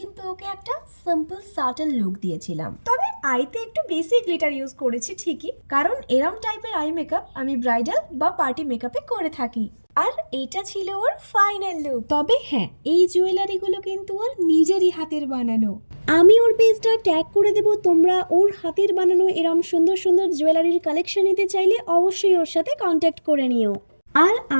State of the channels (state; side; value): inverted; both; correlation -1.00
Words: ওকে একটা সিম্পল সাটল লুক দিয়েছিলাম, তবে আইতে একটু বেশি গ্লিটার ইউজ করেছি ঠিকই, কারণ এরম টাইপের আই মেকআপ আমি ব্রাইডাল বা পার্টি মেকআপে করে থাকি। আর এটা ছিল ওর ফাইনাল লুক। তবে হ্যাঁ, এই জুয়েলারিগুলো কিন্তু ওর নিজেরই হাতের বানানো। আমি ওর পেজটা ট্যাগ করে দেব, তোমরা ওর হাতের বানানো এরম সুন্দর সুন্দর জুয়েলারির কালেকশন নিতে চাইলে অবশ্যই ওর সাথে কন্ট্যাক্ট করে নিও। আর